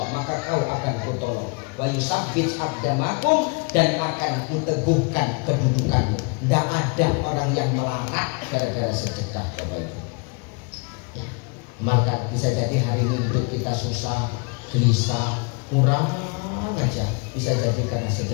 maka kau akan kutolong. Wa yusabbit aqdamakum, dan akan kuteguhkan kedudukanmu. Tidak ada orang yang melarat gara-gara sedekah Bapak Ibu. Ya, maka bisa jadi hari ini hidup kita susah, gelisah, kurang aja. Bisa jadi karena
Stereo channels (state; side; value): quieter; right; 32.5 dB